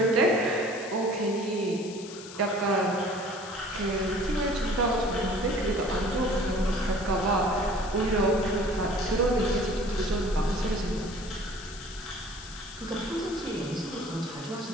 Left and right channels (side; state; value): left; noise; hiss, 15 dB below the sound